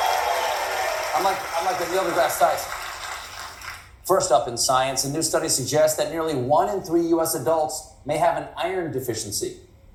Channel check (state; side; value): identical; both; correlation 1.00